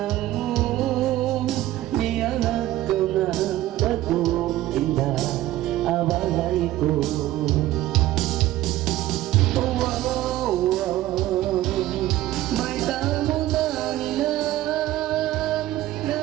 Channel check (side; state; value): left; quieter; 15.0 dB